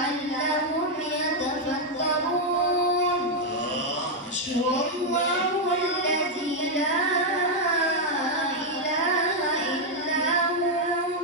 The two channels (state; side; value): normal; both; correlation 0.01